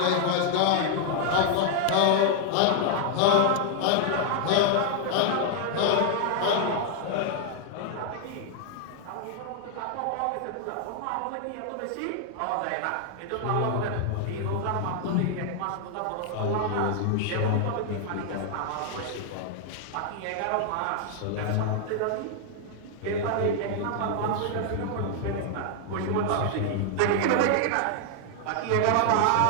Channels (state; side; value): different; both; correlation 0.00